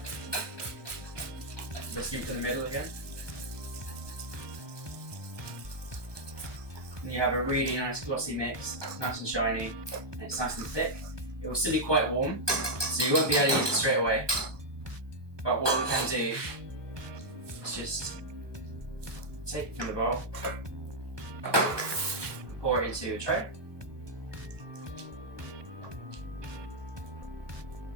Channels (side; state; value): left; late; 1.2 ms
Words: Whisk it to the middle again. And you have a really nice glossy mix. It's nice and shiny, and it's nice and thick. It will still be quite warm, so you won't be able to use it straight away. But what we can do is just take it from the bowl, pour it into a tray.